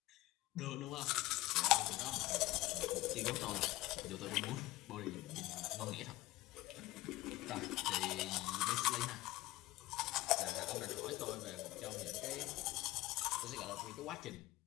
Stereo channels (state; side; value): quieter; right; 18.4 dB